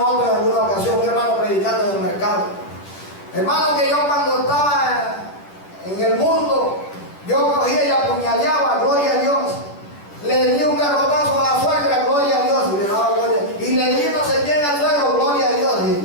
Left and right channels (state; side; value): late; right; 10 ms